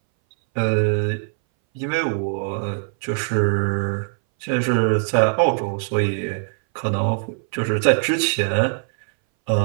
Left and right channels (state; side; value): silent; left; 61 dB below the other